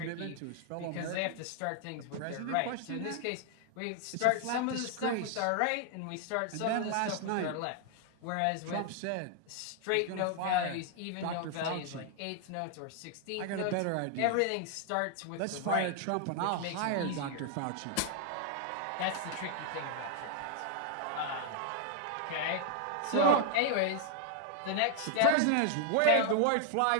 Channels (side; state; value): both; different; correlation 0.00